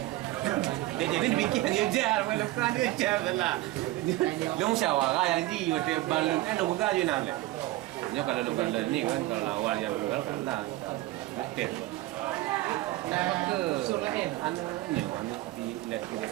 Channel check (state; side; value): quieter; left; 17.3 dB